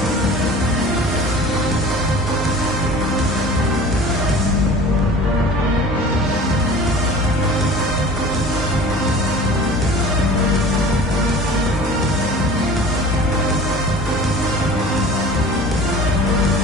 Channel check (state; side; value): normal; both; correlation 0.41